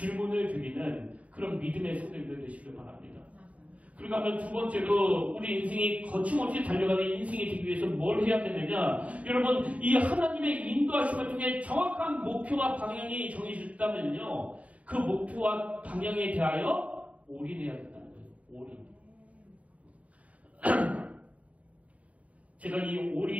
드리는 그런 믿음의 성도님들 되시길 바랍니다. 그러고 하면 두 번째로 우리 인생이 거침없이 달려가는 인생이 되기 위해서 뭘 해야 되느냐? 여러분 이 하나님의 인도하심을 통해 정확한 목표와 방향이 정해졌다면요. 그 목표와 방향에 대하여 올인해야 된다는 거예요. 올인. 제가 이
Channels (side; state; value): left; late; 0.067 ms